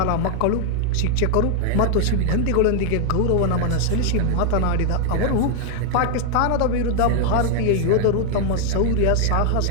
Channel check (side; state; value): both; different; correlation 0.00